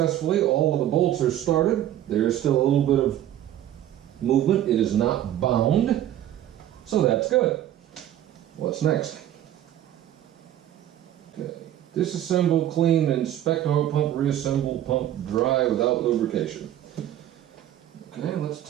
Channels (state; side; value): quieter; left; 12.1 dB